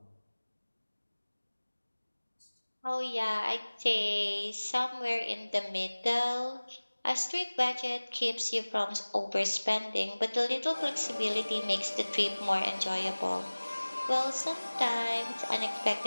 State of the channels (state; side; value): inverted; both; correlation -1.00